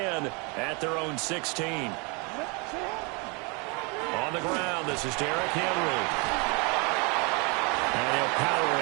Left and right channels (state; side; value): quieter; left; 31.4 dB